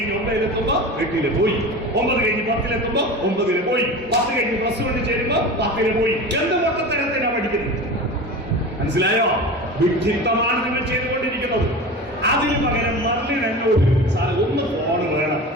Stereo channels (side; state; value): both; normal; correlation 0.31